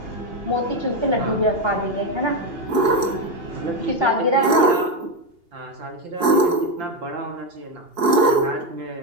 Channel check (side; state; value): left; late; 2.8 ms